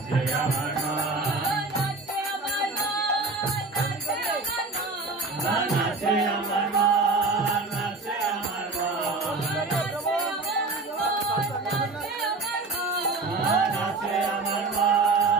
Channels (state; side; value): quieter; left; 3.6 dB